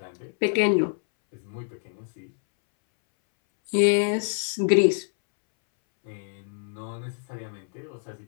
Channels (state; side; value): silent; right; 61 dB below the other